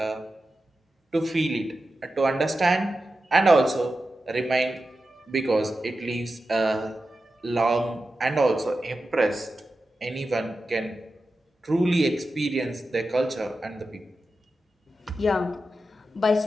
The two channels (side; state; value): both; normal; correlation 0.92